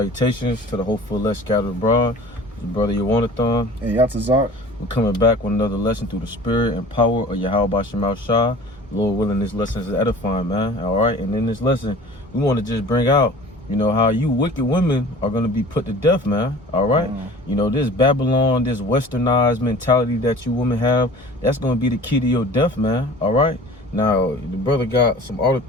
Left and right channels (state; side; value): normal; both; correlation 0.43